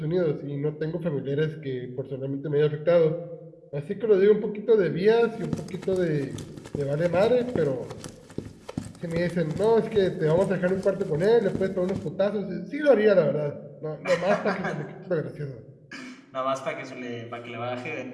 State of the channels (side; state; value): both; identical; correlation 1.00